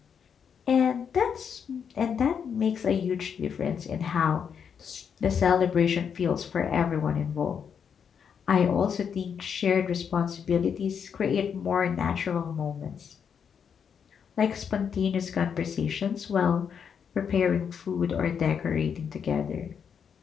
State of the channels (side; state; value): right; quieter; 7.2 dB